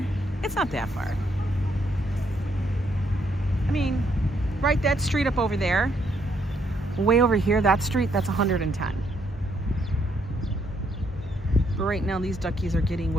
It's not that far. I mean, right, that street up over there, way over here, that street, that's 110. But right now, these duckies are getting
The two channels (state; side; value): normal; both; correlation 0.73